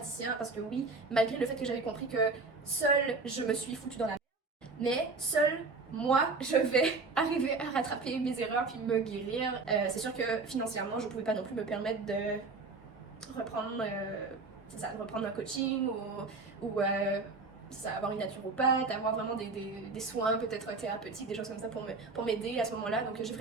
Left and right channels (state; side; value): quieter; left; 3.9 dB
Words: parce que oui, malgré le fait que j'avais compris que seule je me suis foutue dans la merde, mais seule moi, je vais arriver à rattraper mes erreurs puis me guérir. C'est sûr que financièrement, je pouvais pas non plus me permettre de reprendre, reprendre un coaching ou avoir une naturopathe, avoir vraiment des soins peut-être thérapeutiques, des choses comme ça pour m'aider à ce moment-là. Donc j'ai